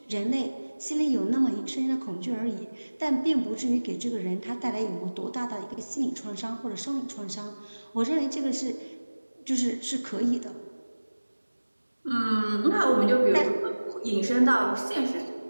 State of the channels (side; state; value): both; inverted; correlation -1.00